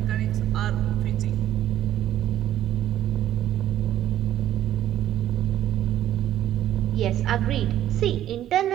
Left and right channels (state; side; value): quieter; left; 12.1 dB